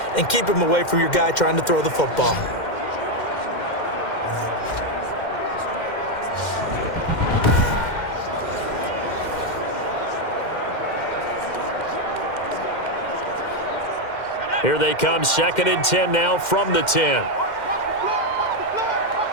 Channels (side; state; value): right; late; 2.1 ms